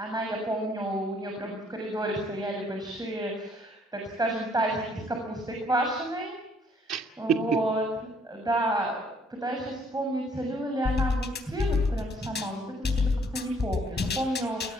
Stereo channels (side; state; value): both; normal; correlation 0.63